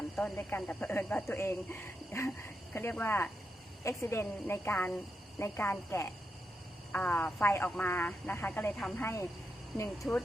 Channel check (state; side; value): normal; both; correlation 0.85